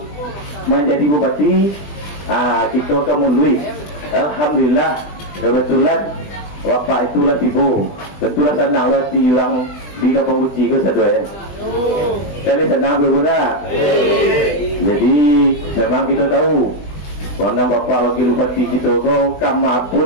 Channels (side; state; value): right; late; 20 ms